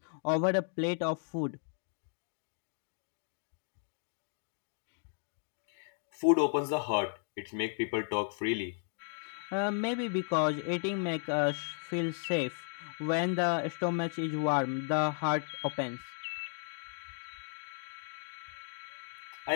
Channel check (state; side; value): silent; right; 54 dB below the other